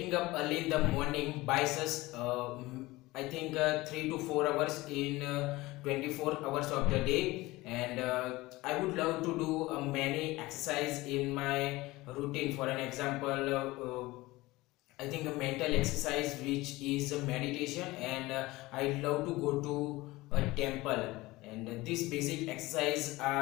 up early in the morning buys us I think 3 to 4 hours in 24 hours of the day, and I would love to do many exercise in my routine. For an example, I think a mental exercise which is a meditation, and I love to go to a temple, and these basic exercise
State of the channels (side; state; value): right; quieter; 20.0 dB